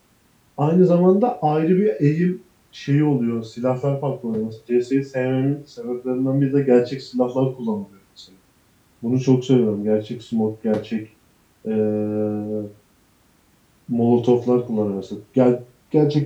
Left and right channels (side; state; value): both; identical; correlation 1.00